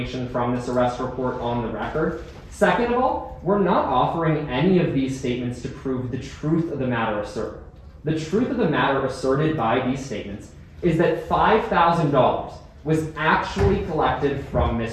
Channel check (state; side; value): identical; both; correlation 1.00